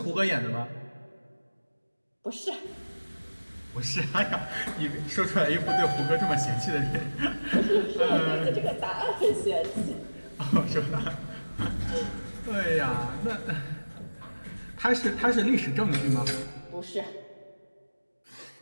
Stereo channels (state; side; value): inverted; both; correlation -1.00